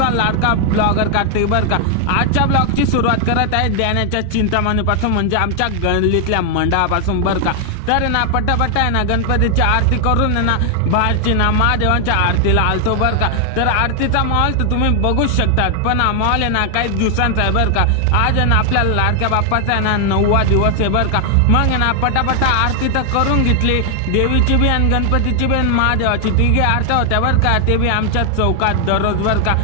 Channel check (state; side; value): different; both; correlation 0.00